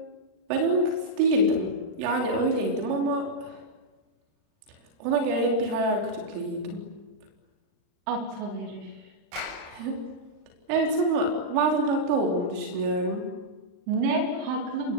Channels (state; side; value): late; left; 39 ms